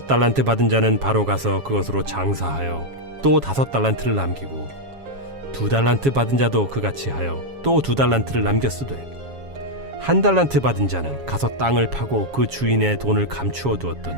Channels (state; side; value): late; left; 7.3 ms